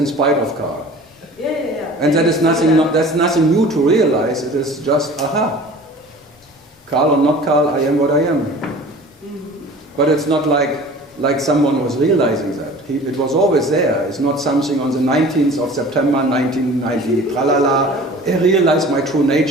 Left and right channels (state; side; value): normal; both; correlation 0.43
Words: spite of Karl. Yeah. And that is nothing. That's nothing new to realize. It is just aha. Karl or not Karl, I am what I am. Mm-hmm. But it's not like someone was realizing that. It was always there. It's not something on the 19th of September 1990, tralala, I realized my true